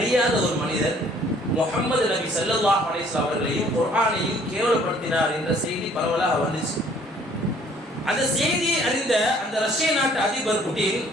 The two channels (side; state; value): both; normal; correlation 0.58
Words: ஒரு மனிதர் முஹம்மது நபி ஸல்லல்லாஹு அலைஹி வஸல்லம் அவர்களையும் குர்ஆனையும் கேவலப்படுத்தினார் என்ற செய்தி பரவலாக வந்துச்சு. அந்த செய்தியை அறிந்த அந்த ரஷ்ய நாட்டு அதிபர் புட்டின்